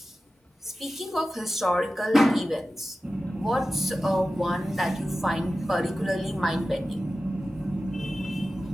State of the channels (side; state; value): both; normal; correlation 0.94